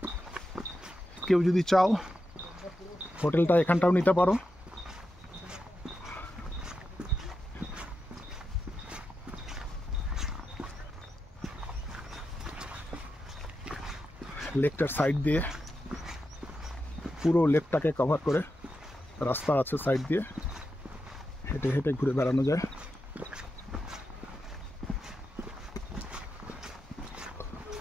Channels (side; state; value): both; normal; correlation 0.88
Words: কেউ যদি চাও হোটেলটা এখানটাও নিতে পারো। লেকটার সাইড দিয়ে, পুরো লেকটাকে কভার করে রাস্তা আছে, সাইড দিয়ে হেঁটে হেঁটে ঘুরে বেড়ানো যায়।